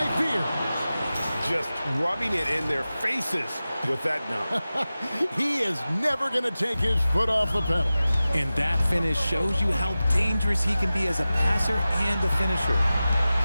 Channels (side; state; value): both; inverted; correlation -0.95